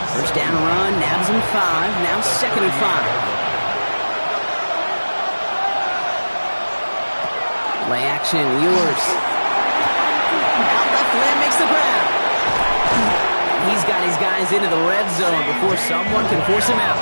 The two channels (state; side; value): inverted; both; correlation -1.00